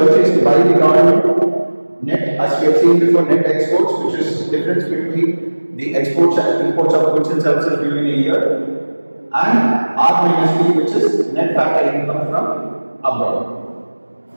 by the government, net, as we have seen before, net exports, which is difference between the exports and imports of goods and services during a year, and R minus P, which is net factor income from abroad.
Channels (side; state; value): both; inverted; correlation -1.00